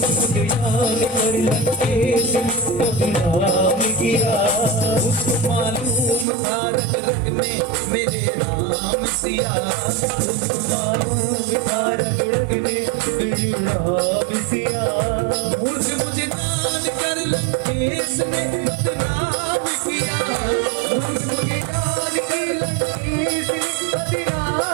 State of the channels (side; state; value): left; drops out; at 6.2 s